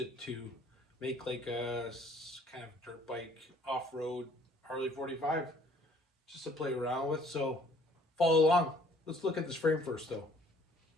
to make like a kind of dirt bike off-road Harley 45 just to play around with. So follow along. Let's look at this frame first though.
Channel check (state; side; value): normal; both; correlation 0.58